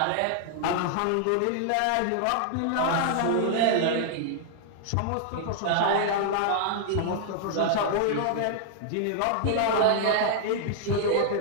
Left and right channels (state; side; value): different; both; correlation -0.01